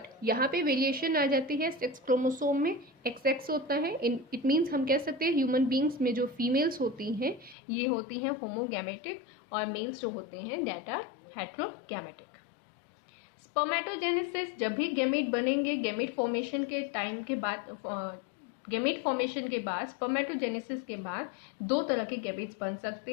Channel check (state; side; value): drops out; right; at 7.6 s